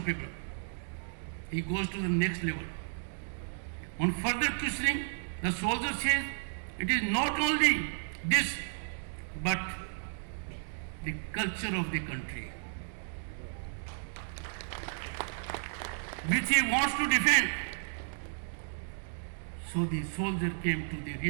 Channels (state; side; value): silent; left; digital silence